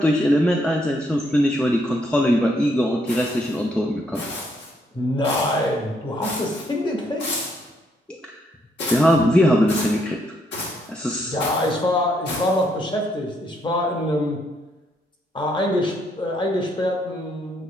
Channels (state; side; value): normal; both; correlation 0.73